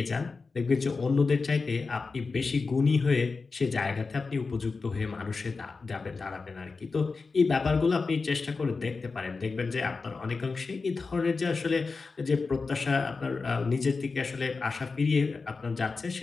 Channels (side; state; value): right; quieter; 4.3 dB